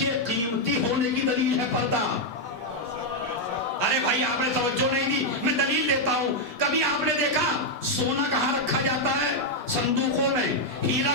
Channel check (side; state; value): both; normal; correlation -0.01